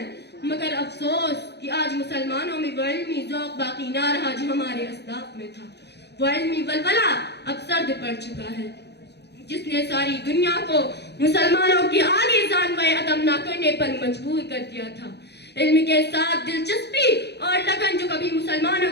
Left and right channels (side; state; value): right; late; 0.49 ms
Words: مگر افسوس کہ آج مسلمانوں میں وہ علمی ذوق باقی نہ رہا جو ہمارے اسلاف میں تھا۔ وہ علمی ولولہ اب سرد پڑ چکا ہے جس نے ساری دنیا کو مسلمانوں کی آگے جانوے عدم نہ کرنے پر مجبور کر دیا تھا۔ علم کے ساتھ دلچسپی اور لگن جو کبھی مسلمانوں